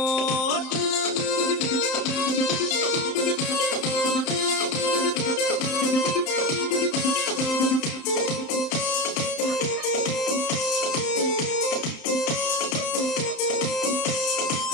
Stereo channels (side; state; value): right; late; 31 ms